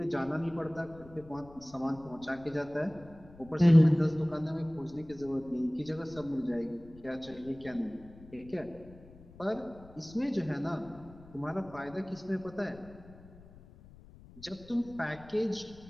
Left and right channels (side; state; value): left; noise; rumble, 21 dB below the sound